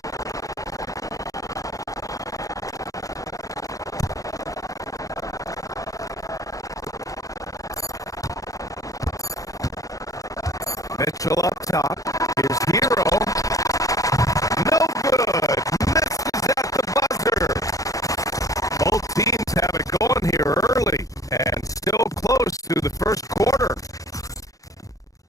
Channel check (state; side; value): late; right; 0.17 ms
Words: Mitchell up top. Here's Hero. No good. Misses at the buzzer. Both teams have it going here early and still close through the first quarter.